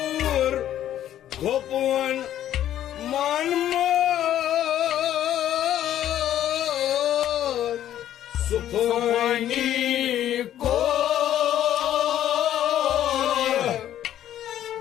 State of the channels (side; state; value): right; quieter; 11.7 dB